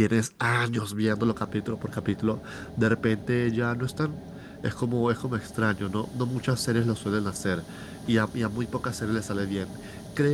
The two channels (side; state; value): both; identical; correlation 1.00